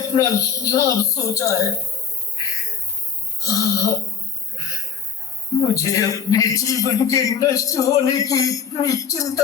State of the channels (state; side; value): quieter; right; 6.6 dB